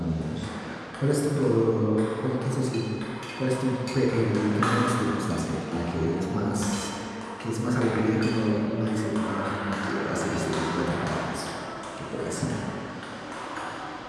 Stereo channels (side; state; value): both; identical; correlation 1.00